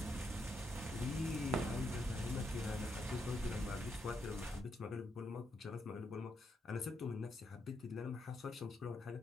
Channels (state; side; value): normal; both; correlation 0.80